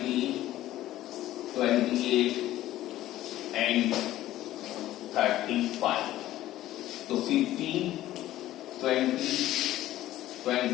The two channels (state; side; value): quieter; right; 14.4 dB